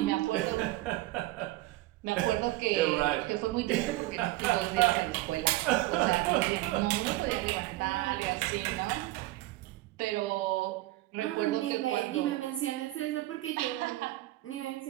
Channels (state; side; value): quieter; left; 17.8 dB